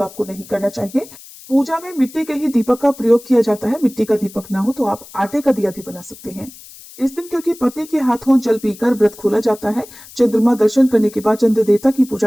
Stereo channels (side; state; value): left; noise; hiss, 19 dB below the sound